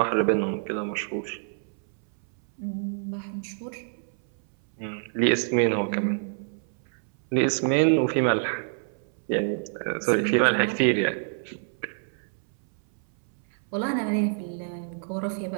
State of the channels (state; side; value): silent; left; 60 dB below the other